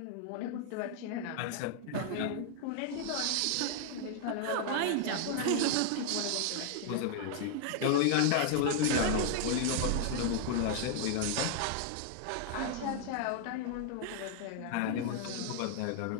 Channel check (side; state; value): both; different; correlation 0.00